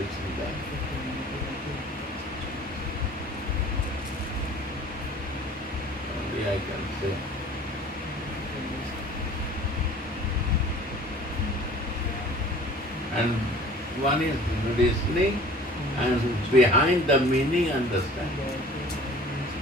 that. Only I can say. And one is listening and behind the meaning understanding.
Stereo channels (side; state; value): both; normal; correlation 0.47